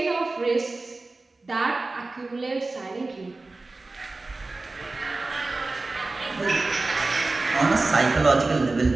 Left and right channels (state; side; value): quieter; left; 3.4 dB